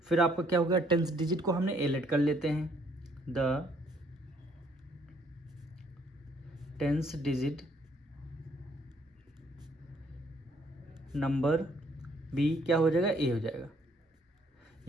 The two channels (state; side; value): normal; both; correlation 0.65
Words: फिर आपका क्या हो गया? टेंस डिजिट को हमने ए लेट कर लेते हैं। The tens digit number B क्या हो जाएगा? ए हो जाएगा।